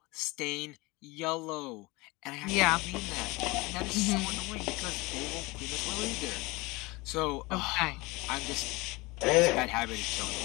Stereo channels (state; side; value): quieter; right; 23.5 dB